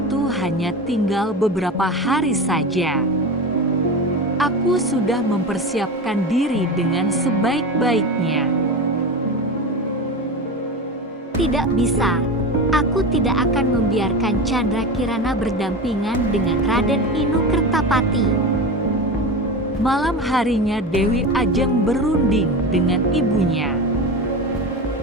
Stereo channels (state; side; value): normal; both; correlation 0.25